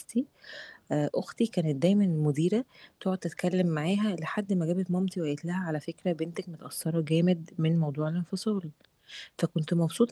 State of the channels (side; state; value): both; identical; correlation 1.00